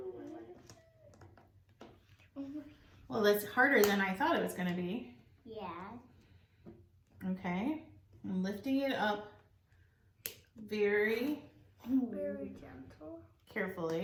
Well, that's harder than I thought it was going to be. Yeah. Okay, I'm lifting it up very gentle.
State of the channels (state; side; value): identical; both; correlation 1.00